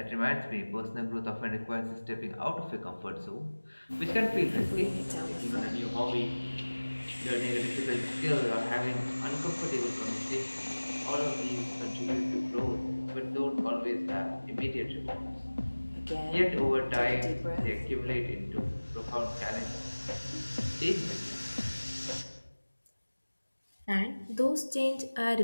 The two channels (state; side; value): inverted; both; correlation -1.00